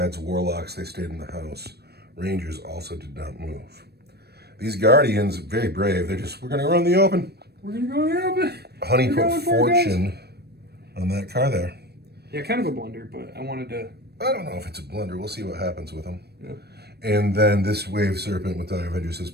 Warlocks, they stayed in the house. Rangers also did not move. These Guardians, very brave. They're just, we're going to run the open. We're going to go in the open. Honey put Fortune on that car there. Yeah, kind of a blunder, but I wanted to... I don't know if it's a blunder. We'll see what happens with them. Yeah. And then this Wave Serpent with Dire Avengers has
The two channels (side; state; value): left; late; 0.47 ms